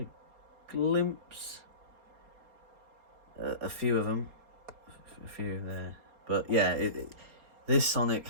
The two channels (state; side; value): late; left; 4.3 ms